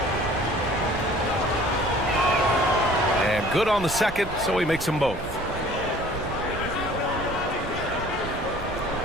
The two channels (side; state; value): right; noise; rumble, 11 dB below the sound